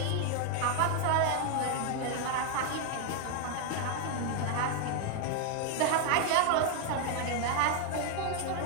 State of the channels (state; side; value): different; both; correlation 0.00